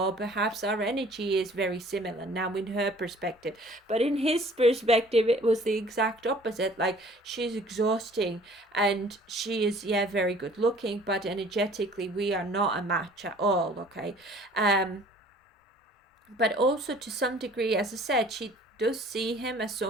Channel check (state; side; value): normal; both; correlation 0.52